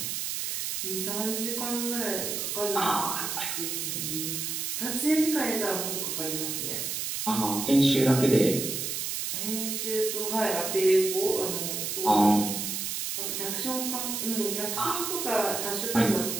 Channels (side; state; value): right; noise; hiss, 2 dB below the sound